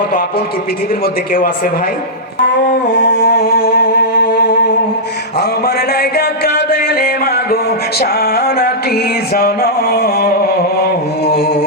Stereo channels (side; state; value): both; normal; correlation -0.10